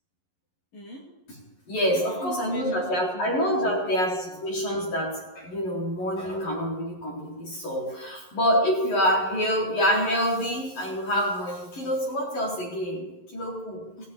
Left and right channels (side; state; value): right; late; 11 ms